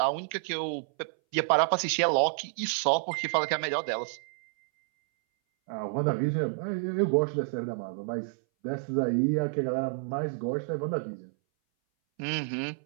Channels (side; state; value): left; silent; 58 dB below the other